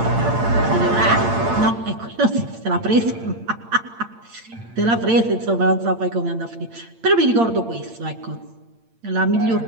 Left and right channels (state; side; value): late; left; 8.8 ms